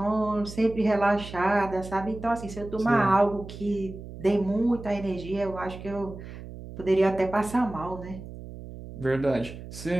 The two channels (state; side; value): noise; right; hum, 13 dB below the sound